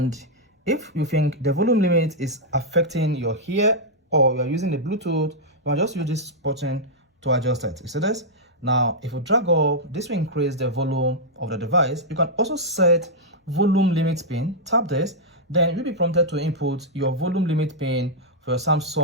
if you think the volume limit is affecting your ear or you're using the Bluetooth, you can just use this button to adjust it. You see this? Now if you drag up, this will increase the volume of the device. You can also set volume limit pin. Tap this, then you'll be prompted to input your volume limit pin for your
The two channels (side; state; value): both; normal; correlation -0.07